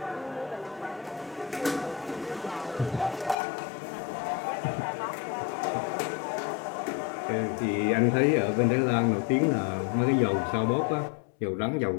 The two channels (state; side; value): drops out; right; at 3.4 s